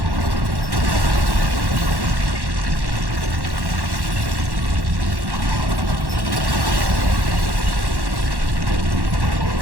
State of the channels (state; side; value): late; left; 1.1 ms